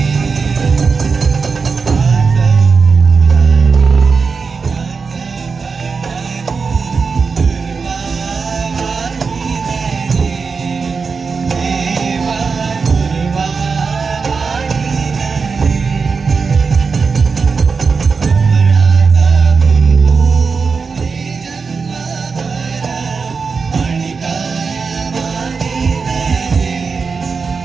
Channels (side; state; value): left; quieter; 5.0 dB